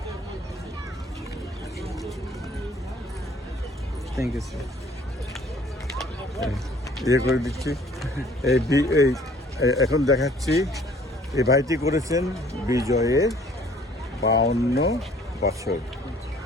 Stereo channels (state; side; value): normal; both; correlation 0.56